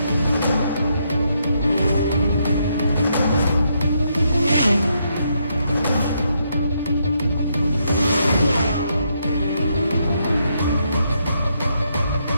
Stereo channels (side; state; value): both; inverted; correlation -0.77